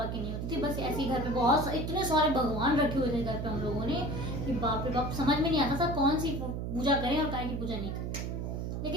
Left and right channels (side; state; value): right; noise; hum, 3 dB below the sound